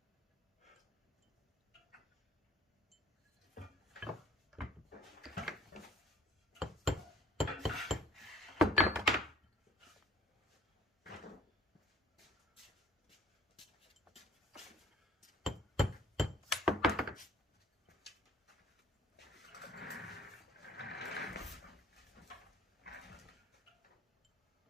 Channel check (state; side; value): normal; both; correlation 0.55